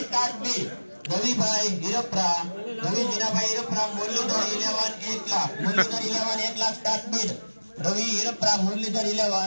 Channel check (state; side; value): inverted; both; correlation -1.00